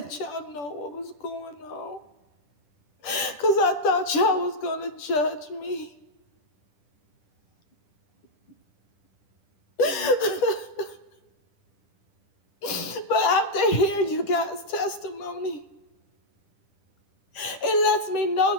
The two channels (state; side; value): late; right; 10 ms